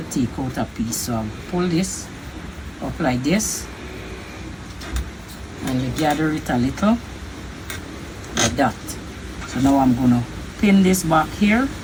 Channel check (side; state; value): both; identical; correlation 1.00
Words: take out a piece. So I'll pull this up like this, and you gather it a little like that. So now I'm gonna pin this back here